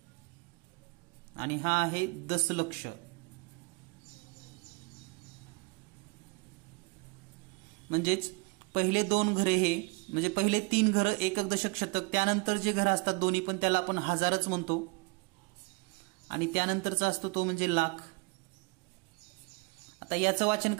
आणि हा आहे दशलक्ष. म्हणजेच पहिले 2 घरे हे म्हणजे पहिले 3 घरं एकक दशक शतक, त्यानंतर जे घरं असतात दोन्ही पण त्याला आपण हजारच म्हणतो आणि त्यानंतरचा असतो तो म्हणजे लाख. आता याचं वाचन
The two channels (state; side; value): quieter; left; 29.1 dB